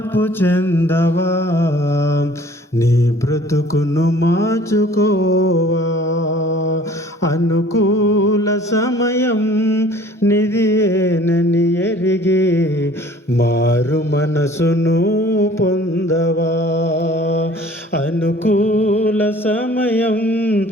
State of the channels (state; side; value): normal; both; correlation 0.51